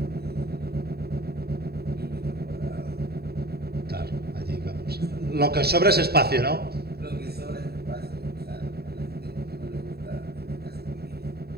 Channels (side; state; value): left; late; 0.46 ms